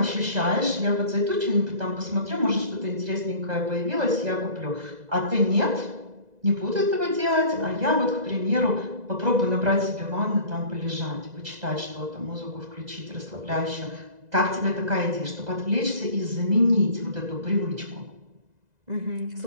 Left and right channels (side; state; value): left; late; 2.0 ms